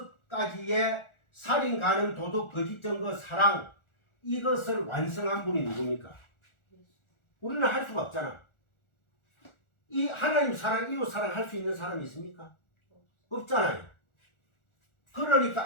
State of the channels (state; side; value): late; right; 1.4 ms